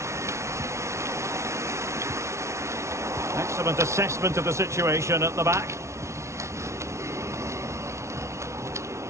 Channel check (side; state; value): left; late; 0.13 ms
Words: Excellent assessment of the situation at the back.